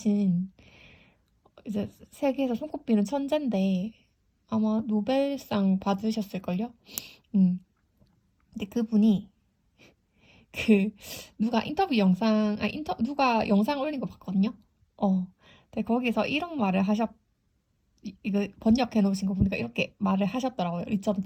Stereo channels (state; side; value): identical; both; correlation 1.00